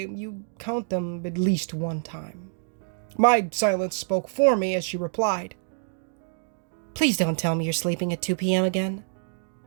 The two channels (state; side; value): silent; left; digital silence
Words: you count them at least one time. My silence spoke for me as she replied, "Please don't tell me you're sleeping at 2 p.m. again."